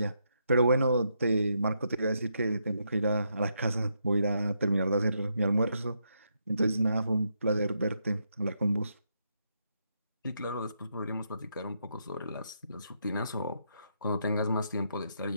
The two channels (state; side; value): inverted; both; correlation -0.79